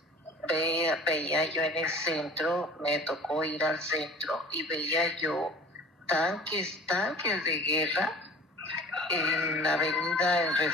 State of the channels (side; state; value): both; normal; correlation 0.44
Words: veía yo en el centro, me tocó ir al centro y veía yo tanques de guerra en la avenida en